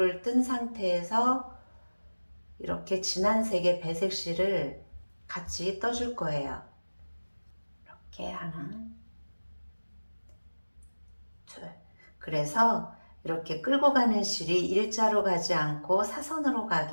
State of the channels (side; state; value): both; inverted; correlation -1.00